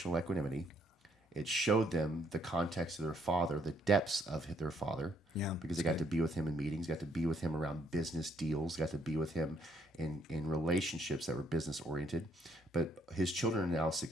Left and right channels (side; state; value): both; normal; correlation 0.69